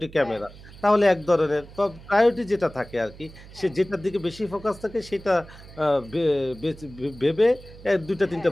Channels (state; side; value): noise; right; hum, 19 dB below the sound